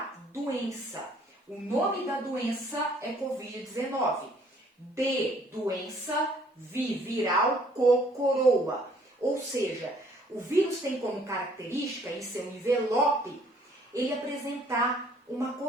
doença. O nome da doença é Covid-19. D, doença, V, viral, co, coroa. Ou seja, o vírus tem como característica, em seu envelope, ele apresentar uma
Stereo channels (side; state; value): both; normal; correlation 0.61